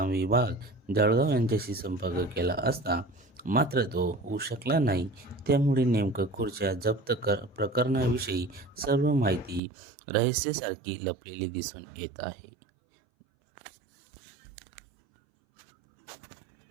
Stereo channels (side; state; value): left; drops out; at 9.6 s